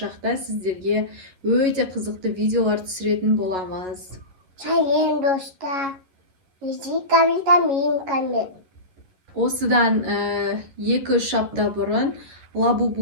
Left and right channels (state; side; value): late; left; 11 ms